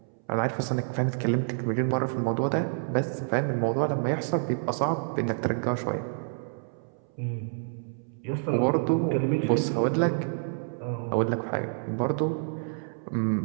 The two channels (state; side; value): silent; left; 59 dB below the other